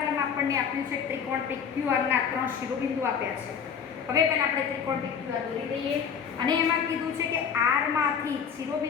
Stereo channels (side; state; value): right; quieter; 7.1 dB